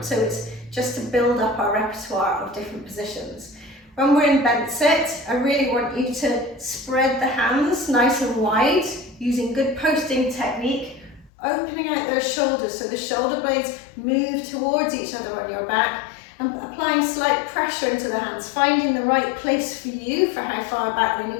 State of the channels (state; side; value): drops out; right; at 11.3 s